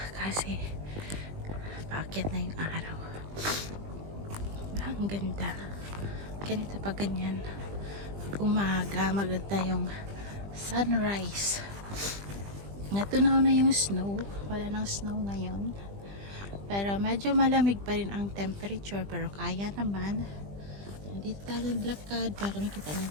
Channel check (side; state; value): left; late; 20 ms